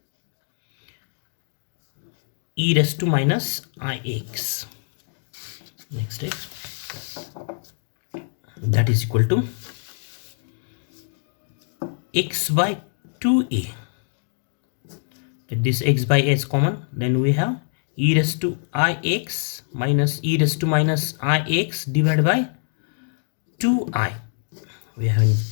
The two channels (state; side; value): silent; right; digital silence